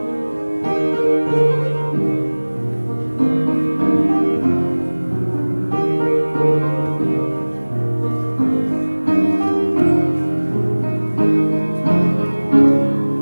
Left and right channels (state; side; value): inverted; both; correlation -1.00